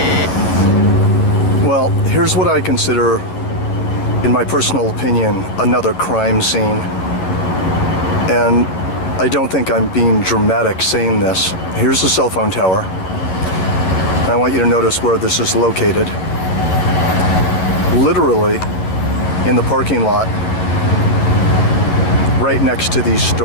Well, here's what I consider, in my personal opinion, another crime scene. And I don't think I'm being dramatic saying this. Here's the cell phone tower. And I want you to notice where this is located. Literally in the parking lot, right next to these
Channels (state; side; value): late; right; 10 ms